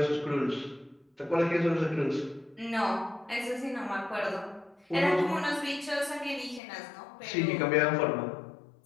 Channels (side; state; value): right; drops out; at 6.6 s